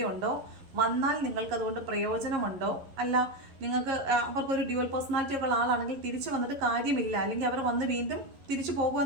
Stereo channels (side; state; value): left; late; 11 ms